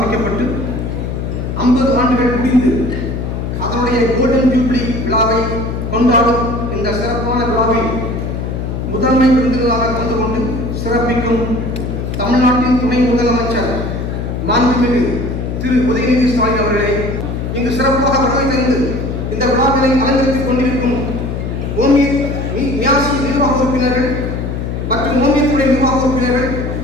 50 ஆண்டுகள் முடிந்து அதனுடைய கோல்டன் ஜூப்ளி விழாவை கொண்டாடும் இந்த சிறப்பான விழாவில் முதன்மை விருந்தினராக கலந்து கொண்டு சிறப்பிக்கும் தமிழ்நாட்டின் துணை முதலமைச்சர் மாண்புமிகு திரு உதயநிதி ஸ்டாலின் அவர்களே, இங்கு சிறப்பாக வருகை தந்து இந்த விழாவினை அலங்கரித்துக் கொண்டிருக்கும் மியாசி நிர்வாக உறுப்பினர்கள் மற்றும் ஓமியத்துறை நிர்வாக உறுப்பினர்கள்,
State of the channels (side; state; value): left; noise; hum, 4 dB below the sound